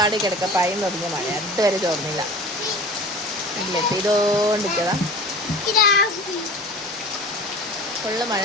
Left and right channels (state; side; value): normal; both; correlation 0.39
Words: കിടക്ക പയം തുടങ്ങിയ മഴ അതുവരെ ചോർന്നില്ല. ഇല്ലേ പെയ്തോണ്ടിരിക്കതാ, ഫുള്ള് മഴ